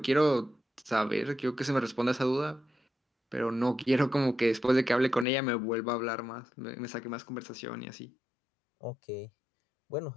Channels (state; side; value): drops out; right; at 5.2 s